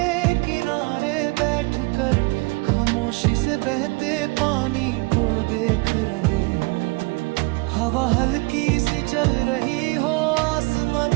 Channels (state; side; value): quieter; left; 26.8 dB